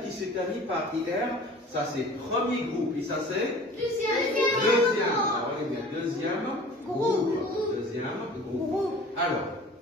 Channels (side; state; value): both; normal; correlation 0.44